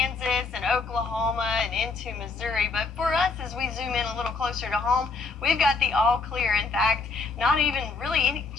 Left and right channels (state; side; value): quieter; right; 4.1 dB